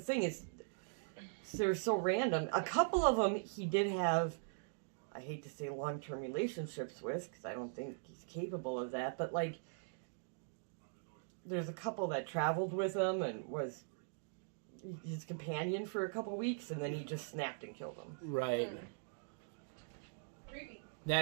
is they're so random. A couple of them he did have, I hate to say long-term relationships with, because I don't think he's capable of that, but like, there's a couple that traveled with him and was his companion for a couple weeks, and then he just snapped and killed him. Right. Creepy.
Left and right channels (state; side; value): silent; left; digital silence